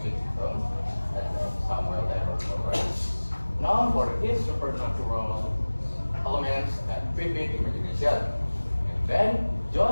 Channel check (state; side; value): inverted; both; correlation -1.00